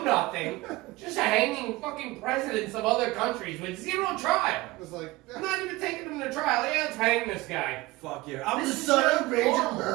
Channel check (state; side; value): quieter; left; 20.2 dB